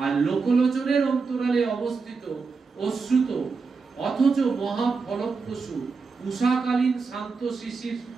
আর লোকলোচনের অন্তরালে অবস্থিত অশ্রুত অথচ মহা ফলপ্রসূ উষাকালীন শান্ত শিশির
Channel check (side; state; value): left; quieter; 4.7 dB